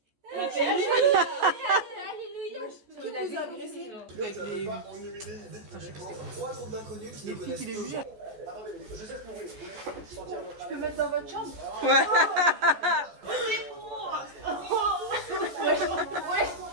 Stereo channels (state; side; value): late; left; 14 ms